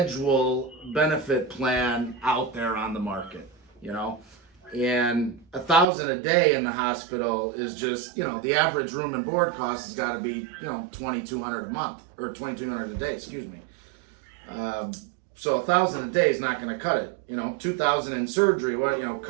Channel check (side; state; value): left; drops out; at 5.9 s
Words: benefit plan out there on the market, and $1,000 a day in the hospital is just, the average room and board cost has got to be, $2,200 a month or $2,200 a day, excuse me. So $1,000 a day is not going to cut it. $2,000 in surgery,